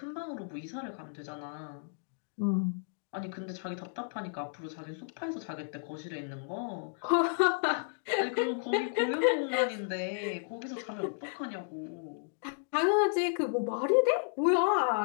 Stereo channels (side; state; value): right; silent; digital silence